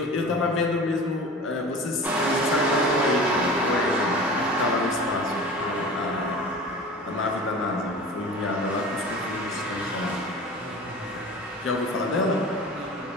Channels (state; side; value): normal; both; correlation 0.37